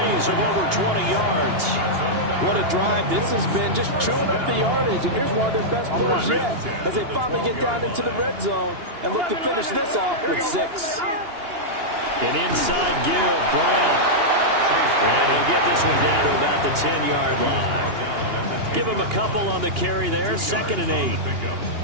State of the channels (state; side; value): late; left; 2.8 ms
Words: of over 20 yards. What a drive. This has been just chewing up the yardage, and here's one of their best plays yet as they finally get down into the red zone and look to finish this off with 6. An inside give, Brown. And he'll get this one down to about the 10-yard line. Give him a couple on the carry there, 2nd and 8.